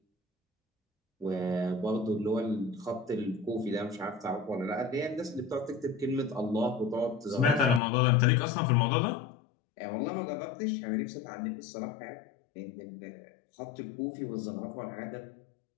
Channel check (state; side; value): drops out; right; at 7.8 s